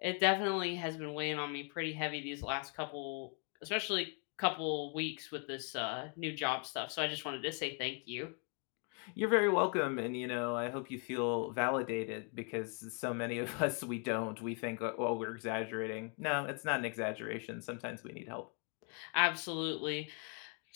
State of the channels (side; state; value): right; quieter; 38.8 dB